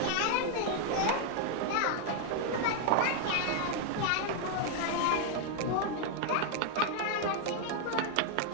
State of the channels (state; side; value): different; both; correlation 0.00